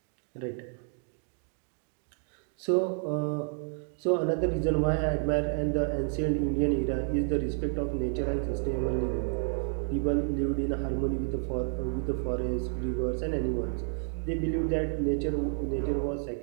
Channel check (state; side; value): silent; left; 58 dB below the other